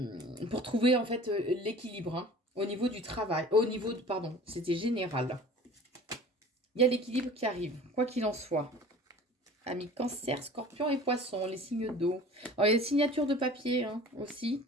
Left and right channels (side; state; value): both; normal; correlation 0.44